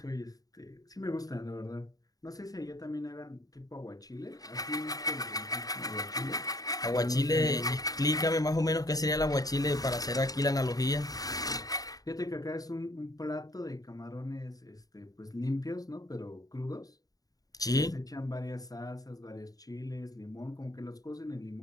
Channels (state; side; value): late; right; 0.18 ms